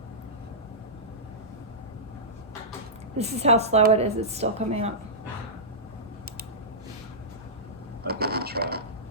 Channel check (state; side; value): normal; both; correlation -0.16